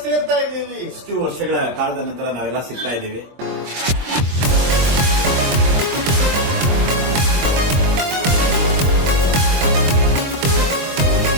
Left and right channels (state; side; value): late; left; 23 ms